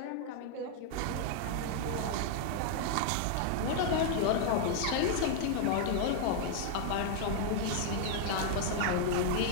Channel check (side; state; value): both; different; correlation 0.00